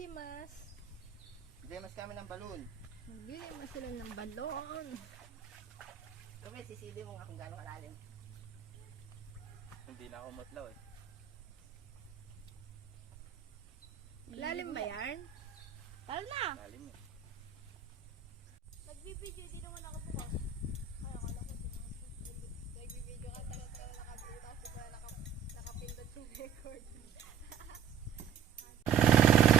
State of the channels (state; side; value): quieter; left; 8.2 dB